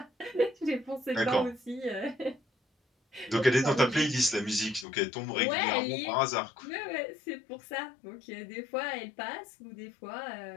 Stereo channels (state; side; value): drops out; right; at 4.9 s